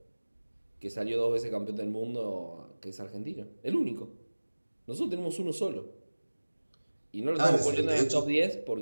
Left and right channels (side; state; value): both; inverted; correlation -1.00